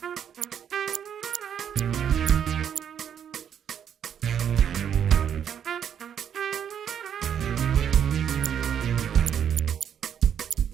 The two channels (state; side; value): quieter; left; 8.7 dB